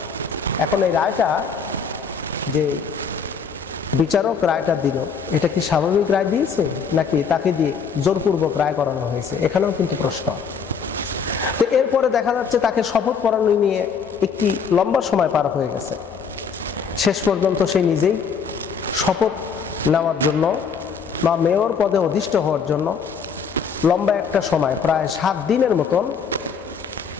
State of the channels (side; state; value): right; quieter; 6.1 dB